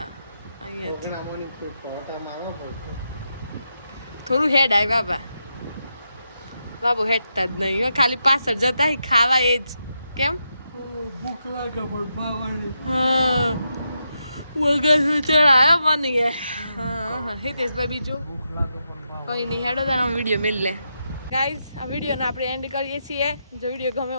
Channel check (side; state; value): both; inverted; correlation -0.84